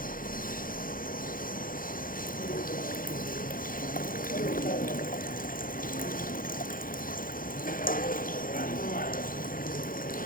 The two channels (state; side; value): late; right; 0.40 ms